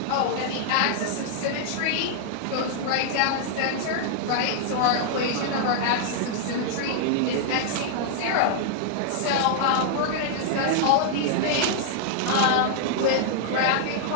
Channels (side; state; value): both; different; correlation -0.01